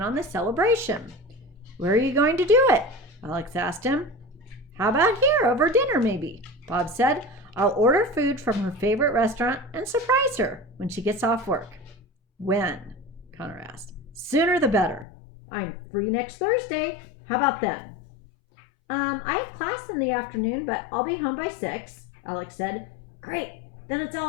on the celebration. Where are you going to do it? Alex asked him. How about here, over dinner maybe? Bob said. I'll order food from her favorite restaurant and surprise her when she gets off work. When? Connor asked. Sooner the better. I'm free next Thursday. How about then? I have class in the afternoon, but I'll be home by 6, Alex said. Great, then it's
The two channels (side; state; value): right; drops out; at 15.1 s